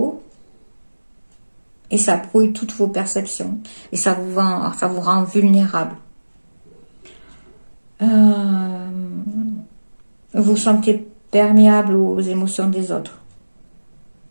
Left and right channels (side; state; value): both; inverted; correlation -1.00